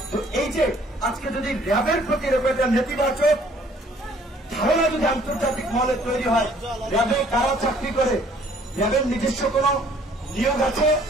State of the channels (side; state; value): both; normal; correlation 0.59